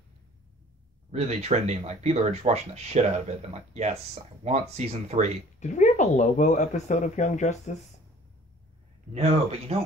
really trending. Like, people are just watching the shit out of it. And like, yes, I want season 3. Did we have a Lobo episode of Young Justice? No, but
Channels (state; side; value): normal; both; correlation 0.51